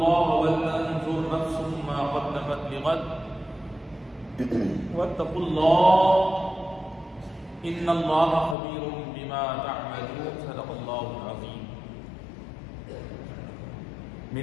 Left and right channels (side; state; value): right; drops out; at 8.6 s